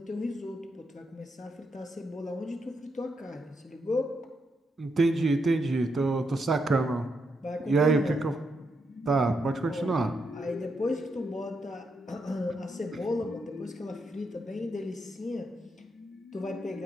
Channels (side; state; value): both; normal; correlation 0.81